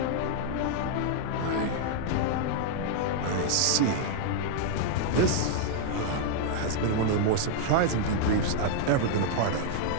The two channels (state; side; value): different; both; correlation -0.01